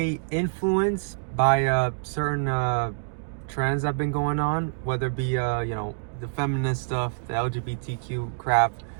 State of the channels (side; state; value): left; silent; digital silence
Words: influenced by certain trends that have been going on, whether it be, the feminist stuff, the LGBTQ crap,